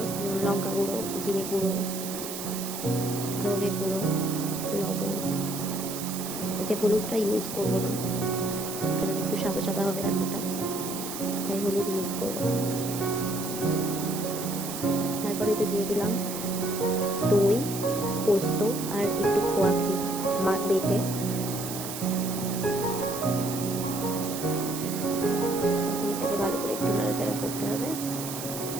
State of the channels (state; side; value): noise; right; hiss, 7 dB below the sound